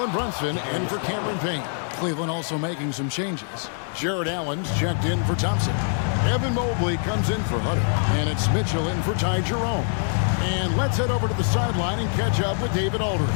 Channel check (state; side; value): silent; right; 62 dB below the other